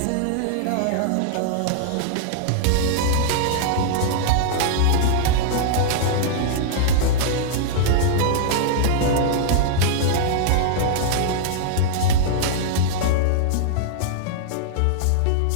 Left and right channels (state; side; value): different; both; correlation -0.01